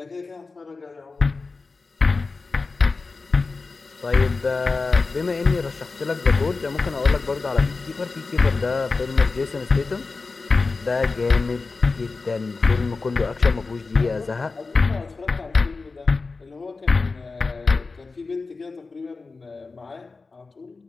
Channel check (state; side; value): quieter; right; 4.0 dB